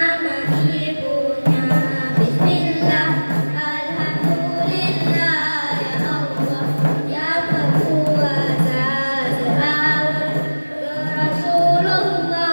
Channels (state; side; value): inverted; both; correlation -1.00